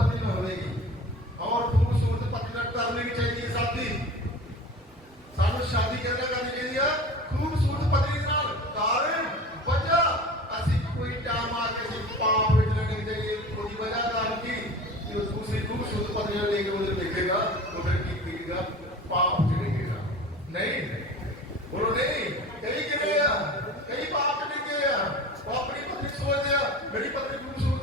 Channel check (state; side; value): normal; both; correlation 0.37